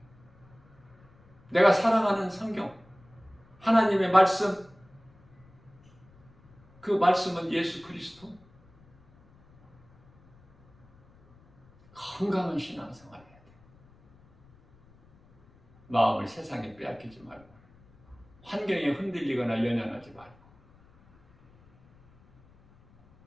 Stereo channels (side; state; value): left; noise; rumble, 28 dB below the sound